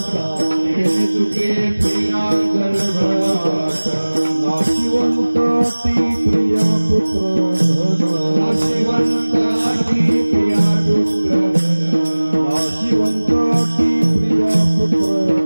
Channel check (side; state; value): both; inverted; correlation -1.00